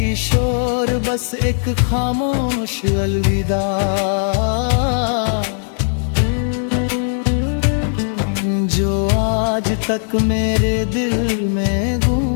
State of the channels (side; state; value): right; silent; digital silence